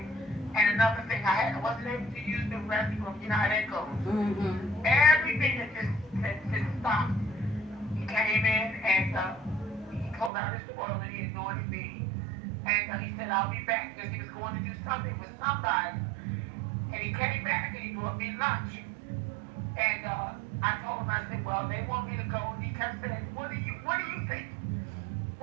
And another thing, I wasn't able to use the restroom. You know how that goes. Everything that just stopped. He came in and he pulled out his oil and he anointed me. And he said, I'll be back because he was going to do something with somebody. And he came back and he brought me lunch. And I told him, I said, well, they want me to go. And he kept saying, what do you think?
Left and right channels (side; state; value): left; drops out; at 10.3 s